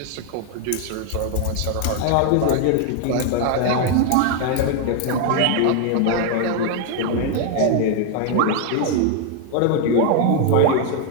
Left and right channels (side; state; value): both; different; correlation 0.01